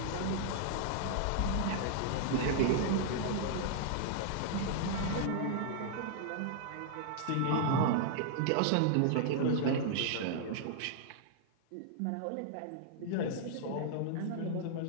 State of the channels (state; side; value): different; both; correlation -0.01